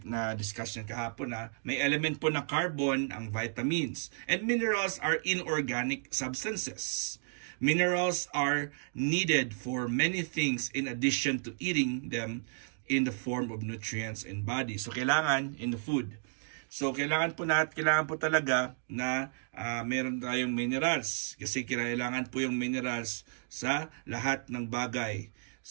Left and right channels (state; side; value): silent; left; digital silence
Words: na-discuss yan kahapon na may element po na carbon ang vitamins. And minerals are inorganic substances. Minerals are needed for many things in addition to eating them in the form of nutrients in body. So, kailangan in the food. So, kailangan po talaga na meron tayong minerals. Kasi kailangan po yung minerals sa lahat ng bagay.